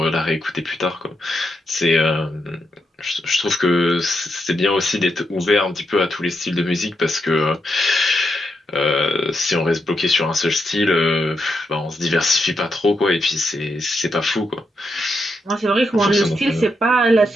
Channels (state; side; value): normal; both; correlation 0.82